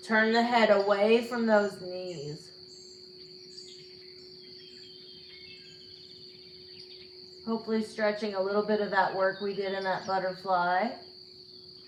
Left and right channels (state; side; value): identical; both; correlation 1.00